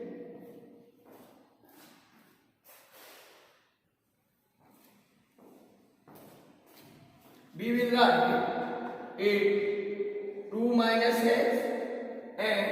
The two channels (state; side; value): identical; both; correlation 1.00